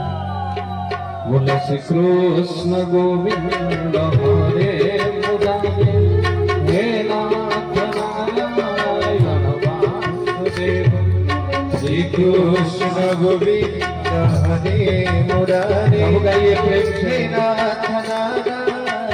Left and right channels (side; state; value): both; identical; correlation 1.00